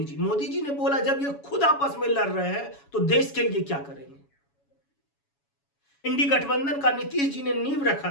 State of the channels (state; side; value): late; right; 7.1 ms